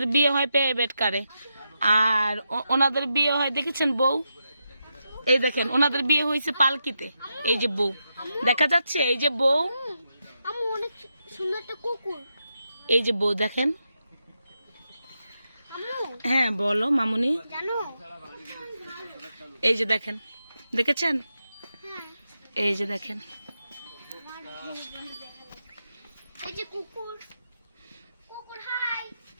বিয়ে হয় প্রাইভেট কারে, আর ওনাদের বিয়ে হয় দেখেছেন বউ, এই দেখেন ওনাদের বিয়ে হয়েছে পালকিতে। এই যে বউ দেখা যাচ্ছে, এই যে বউ, অনেক সুন্দর একটা কুকুর। এই যে বউ দেখেন। হ্যাঁ বলো মামুনি। জানো এই যে দেখেন, দেখেছেন, এই যে দেখেন, এই যে কুকুর, কুকুর হাই,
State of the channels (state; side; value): inverted; both; correlation -0.85